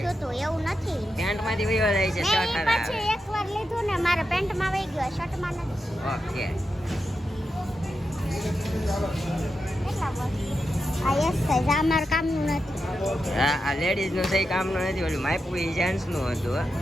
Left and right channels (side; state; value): both; normal; correlation 0.88